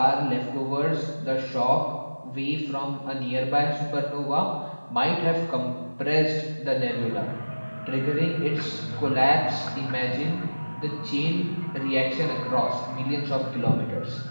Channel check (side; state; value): both; inverted; correlation -1.00